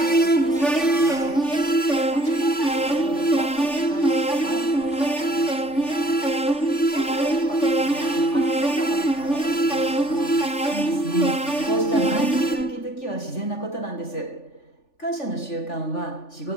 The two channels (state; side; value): late; right; 3.5 ms